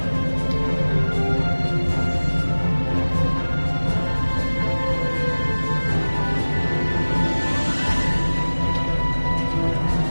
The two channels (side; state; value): both; inverted; correlation -1.00